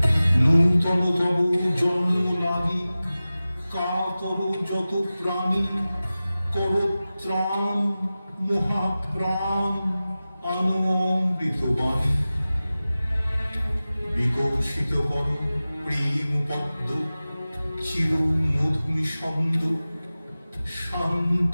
নূতন তব জন্ম লাগি কাতর যত প্রাণী, কর ত্রাণ মহাপ্রাণ আনো অমৃত বাণী। বিকশিত কর প্রেম পদ্ম, চির মধুমি ছন্দ,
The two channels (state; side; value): inverted; both; correlation -0.96